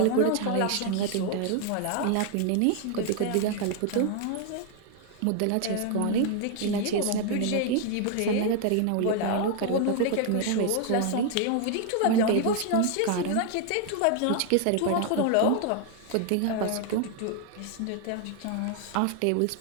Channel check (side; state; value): both; different; correlation 0.00